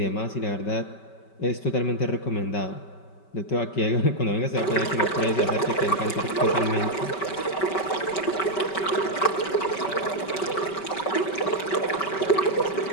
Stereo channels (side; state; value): right; late; 5.2 ms